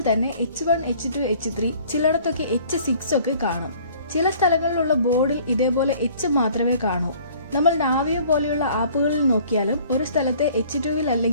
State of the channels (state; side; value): inverted; both; correlation -0.53